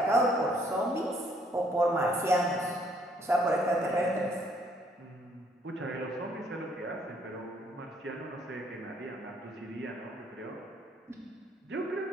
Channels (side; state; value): both; normal; correlation 0.66